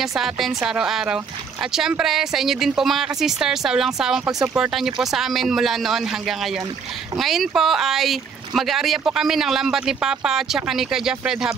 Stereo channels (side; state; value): left; quieter; 6.1 dB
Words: sa atin sa araw-araw. At syempre, sa inyo din po mga ka-sisters, sa walang sawang pagsuporta niyo po sa amin mula noon hanggang ngayon. Ngayon po ay mag-aarya po kami ng lambat ni Papa at saka ni Kuya Fred